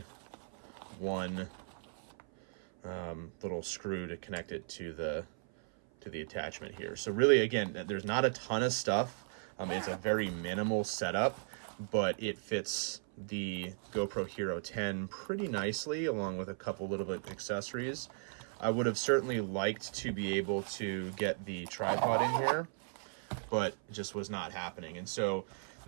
one little screw to connect it to the attachment here. So really, again, there's not a ton of stuff. It's a very minimal setup, but it fits the GoPro Hero 10 pretty nicely, along with a couple little bit of accessories. I would have certainly liked to be able to get the tripod in here, but it just was not happening. And so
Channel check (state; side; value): silent; left; 53 dB below the other